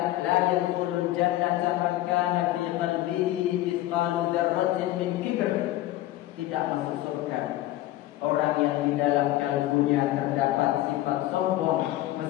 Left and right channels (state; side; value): quieter; right; 15.5 dB